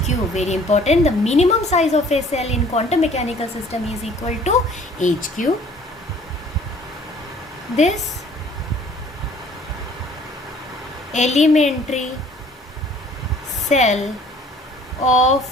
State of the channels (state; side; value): normal; both; correlation 0.54